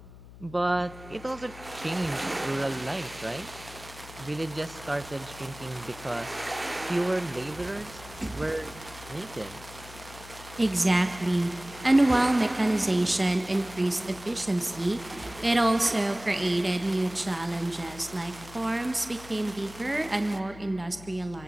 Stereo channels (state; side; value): noise; left; hum, 17 dB below the sound